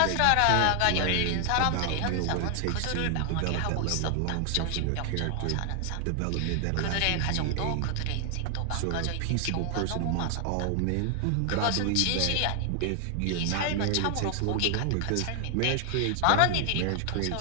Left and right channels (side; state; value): both; different; correlation 0.00